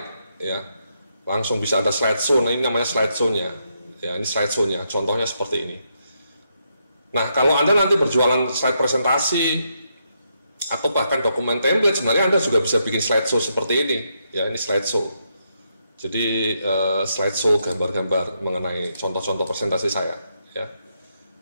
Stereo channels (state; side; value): inverted; both; correlation -0.79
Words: ya, langsung bisa ada slideshow. Nah ini namanya slideshow-nya ya, ini slideshow-nya, contohnya seperti ini. Nah kalau Anda nanti berjualan slide presentasi atau bahkan dokumen template, sebenarnya Anda juga bisa bikin slideshow seperti ini ya. Ini slideshow, jadi slideshow gambar-gambar mengenai contoh-contoh presentasi saya ya.